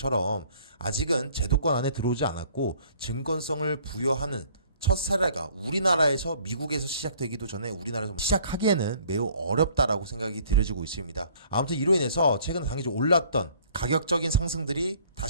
아직은 제도권 안에 들어오지 않았고, 증권성을 부여하는 첫 사례가 우리나라에서 미국에서 시작되기도 전에 우리나라에서 시작하기에는 매우 어렵다라고 생각이 들어지고 있습니다. 아무튼 이로 인해서 최근 단기적으로 올랐던 가격적인 상승들이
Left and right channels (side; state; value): both; inverted; correlation -0.56